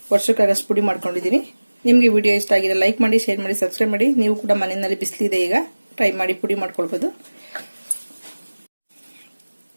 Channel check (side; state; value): both; inverted; correlation -1.00